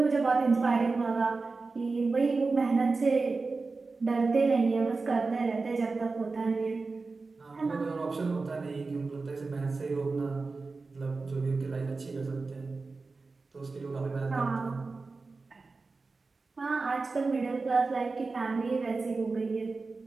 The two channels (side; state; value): left; quieter; 4.0 dB